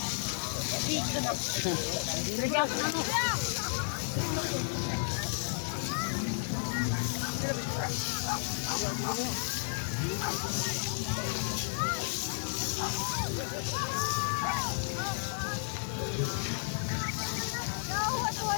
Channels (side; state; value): right; silent; digital silence